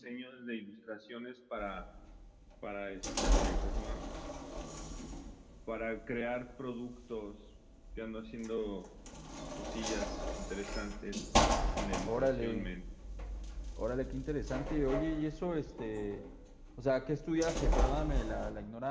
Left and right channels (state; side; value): identical; both; correlation 1.00